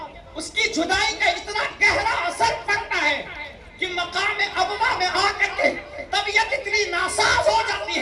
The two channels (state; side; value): identical; both; correlation 1.00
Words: اس کی جدائی کا اتنا گہرا اثر پڑتا ہے کہ مقام ابوا میں آ کر کے طبیعت اتنی ناساز ہو جاتی